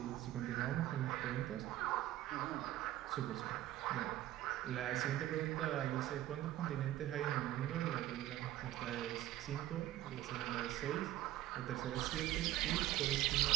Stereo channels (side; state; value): left; quieter; 14.3 dB